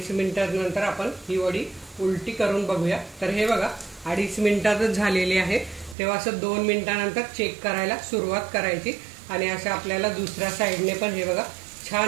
मिनिटांनंतर आपण ही वडी उलटी करून बघूया। तर हे बघा 2.5 मिनिटातच झालेली आहे। तेव्हा असं 2 मिनिटांनंतर चेक करायला सुरुवात करायची आणि अशा आपल्याला दुसऱ्या साईडने पण हे बघा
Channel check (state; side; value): drops out; left; at 6.0 s